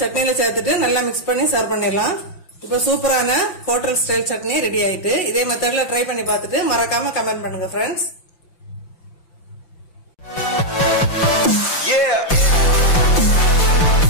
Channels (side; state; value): right; late; 5.8 ms